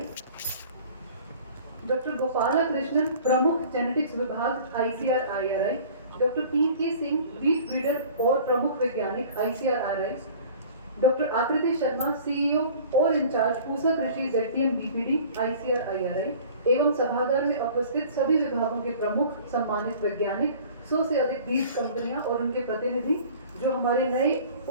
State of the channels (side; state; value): both; inverted; correlation -0.46